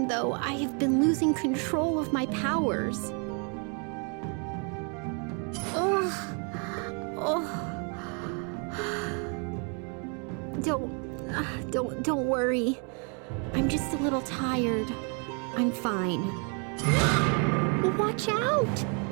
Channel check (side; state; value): left; quieter; 37.6 dB